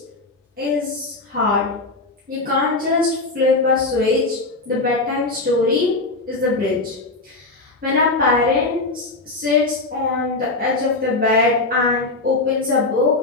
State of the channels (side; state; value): right; quieter; 3.2 dB